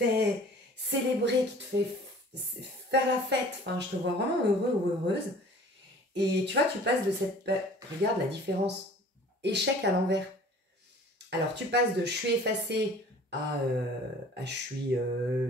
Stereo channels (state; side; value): normal; both; correlation 0.48